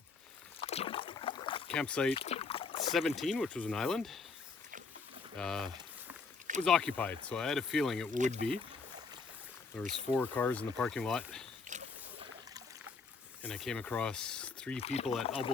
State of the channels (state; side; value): quieter; right; 4.6 dB